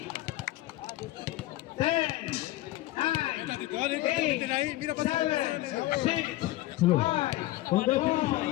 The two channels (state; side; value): quieter; right; 16.9 dB